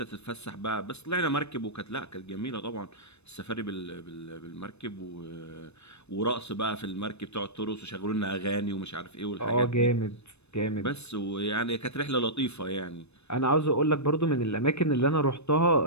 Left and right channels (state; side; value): late; right; 0.81 ms